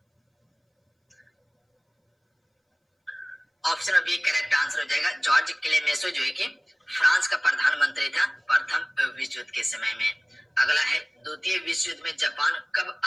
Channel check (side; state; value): both; identical; correlation 1.00